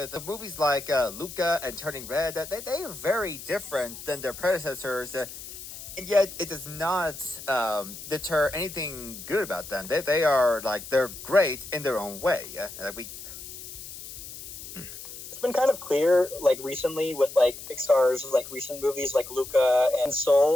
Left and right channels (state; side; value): noise; left; hiss, 12 dB below the sound